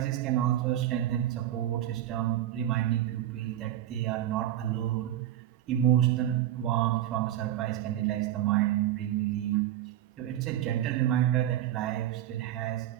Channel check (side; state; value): left; quieter; 12.3 dB